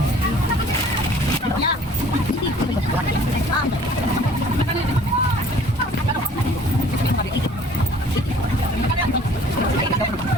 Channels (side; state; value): both; normal; correlation 0.52